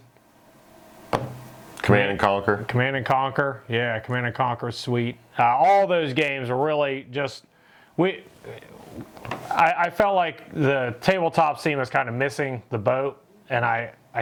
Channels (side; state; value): both; identical; correlation 1.00